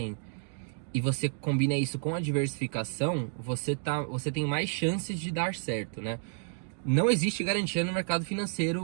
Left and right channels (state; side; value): silent; left; digital silence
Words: e você combina isso com a diversificação, você tem mais chances de dar certo, né? Não existe garantia no mercado